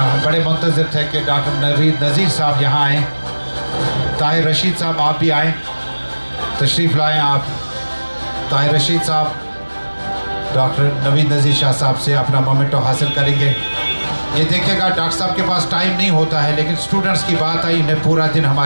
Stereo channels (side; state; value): both; inverted; correlation -1.00